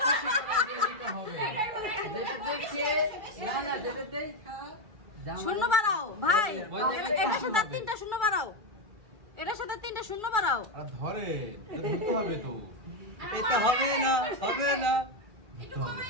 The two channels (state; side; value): late; left; 2.3 ms